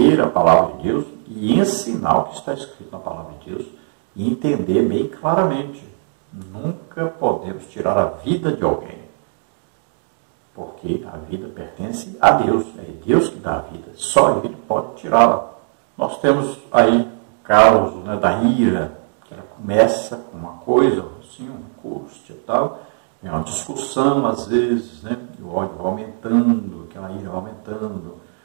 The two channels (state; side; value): silent; left; 64 dB below the other